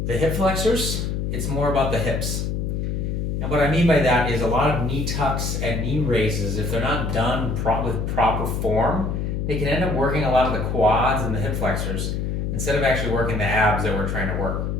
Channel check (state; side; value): noise; left; hum, 1 dB below the sound